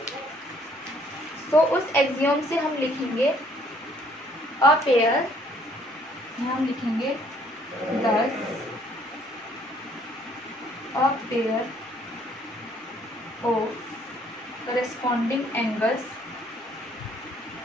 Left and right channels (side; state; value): both; normal; correlation 0.63